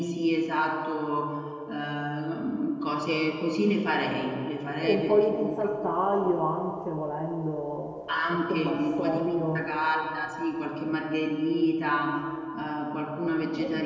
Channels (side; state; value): both; identical; correlation 1.00